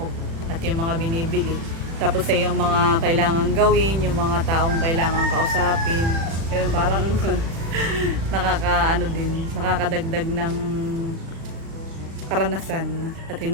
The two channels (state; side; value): late; left; 36 ms